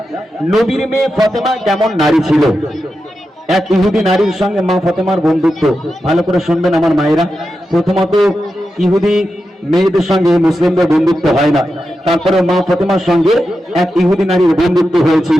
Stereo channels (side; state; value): both; normal; correlation 0.90